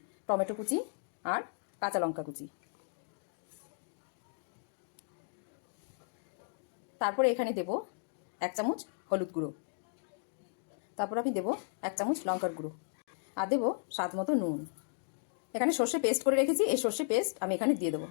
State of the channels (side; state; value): right; silent; digital silence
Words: টমেটো কুচি আর কাঁচা লঙ্কা কুচি। তারপরে এখানে দেব 1 চামচ হলুদ গুঁড়ো। তারপর আমি দেবো 1 চামচ লঙ্কার গুঁড়ো আর দেবো স্বাদ মতো নুন। এখানে সর্ষে পেস্ট করে রেখেছি, এই সর্ষে পেস্ট আমি এখানে দিয়ে দেবো।